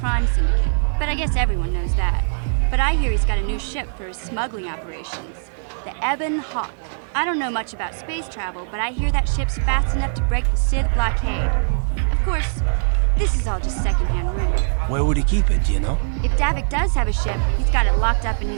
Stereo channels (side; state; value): left; silent; digital silence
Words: Syndicate, but I guess everyone knows that. But I hear he's got a new ship for his smuggling operations, the Ebon Hawk. I don't know much about space travel, but I hear that ship's fast enough to break the Sith blockade. Of course, this is all just secondhand rumor. Where would he keep it, do you know? If Davik does have a ship, he's got it locked up in